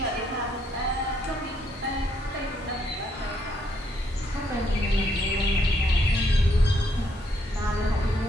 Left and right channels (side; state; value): both; normal; correlation 0.72